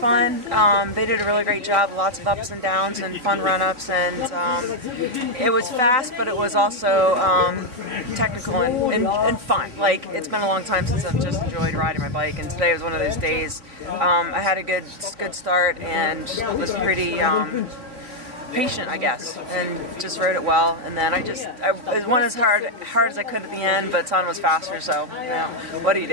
They did a really great job. Lots of ups and downs and fun run-ups, and it was fast, but it was also technical and fun. Like, it's been a long time since I've just enjoyed riding my bike, and today was one of those days. I had a good start and was pretty patient, I guess, and just rode it well. And then I went as hard as I could at the end, but Son was faster, so you know, what do you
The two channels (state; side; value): late; left; 4.1 ms